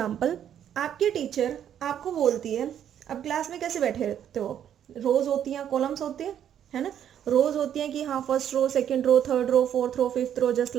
आपकी टीचर आपको बोलती है, अब क्लास में कैसे बैठे रहते हो, रोज होती हैं, कॉलम्स होते हैं, है ना. रोज होती हैं कि हाँ first row, second row, third row, fourth row, fifth row, just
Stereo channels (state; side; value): quieter; left; 9.8 dB